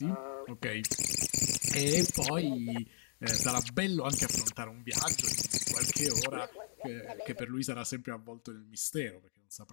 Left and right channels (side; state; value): right; silent; digital silence